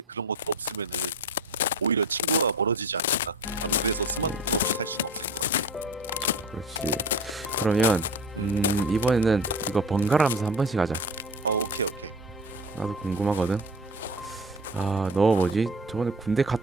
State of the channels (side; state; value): both; normal; correlation 0.35